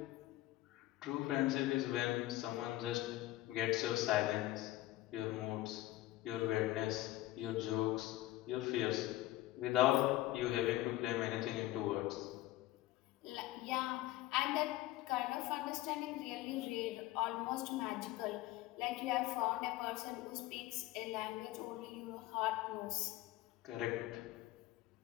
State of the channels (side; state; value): right; quieter; 16.6 dB